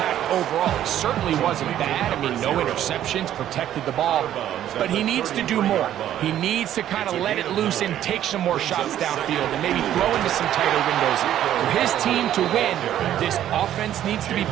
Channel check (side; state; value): left; quieter; 11.6 dB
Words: overall. He certainly wasn't bad. I mean, no interceptions, protected the ball. But he needs to do more. He needs to kind of let it loose and take some more shots downfield and maybe throw into some tighter windows. For his team to win, this offense needs to be